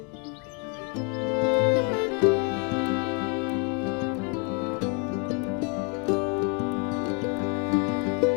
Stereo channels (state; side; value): quieter; right; 35.2 dB